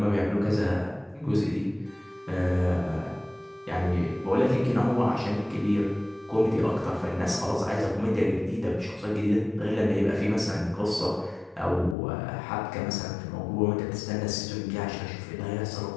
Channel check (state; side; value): drops out; right; at 12.0 s